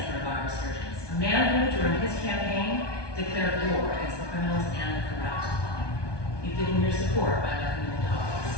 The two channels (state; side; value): late; right; 1.2 ms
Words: of our resurgence, a man who, during his campaign, declared war against the criminals and the corrupt. You've given your support by letting him into office,